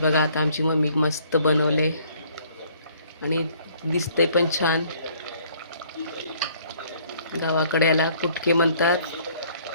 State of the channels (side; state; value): both; inverted; correlation -0.60